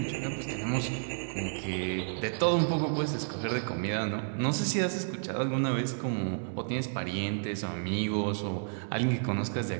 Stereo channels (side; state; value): left; silent; 57 dB below the other